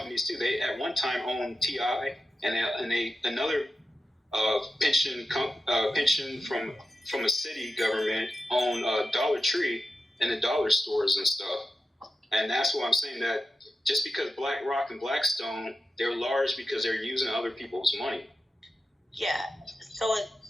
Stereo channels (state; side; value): normal; both; correlation 0.90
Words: too. They at one time owned TI, and another pension from a city government owned Dollar Tree and the dollar stores and stuff. And that's why I'm saying that just because BlackRock and Blackstone, they're large because they're using other people's money. Yeah, so is